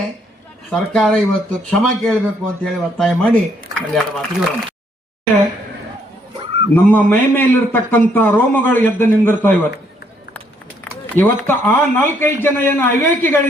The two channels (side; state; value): both; normal; correlation 0.70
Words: ಸರ್ಕಾರ ಇವತ್ತು ಕ್ಷಮೆ ಕೇಳಬೇಕು ಅಂತ ಹೇಳಿ ಒತ್ತಾಯ ಮಾಡಿ 2 ಮಾತಿಗೆ ನಮ್ಮ ಮೈ ಮೇಲಿರ್ತಕ್ಕಂಥ ರೋಮಗಳು ಎದ್ದು ನಿಂದಿರ್ತಾವ ಇವತ್ತು ಆ 4-5 ಜನ ಏನು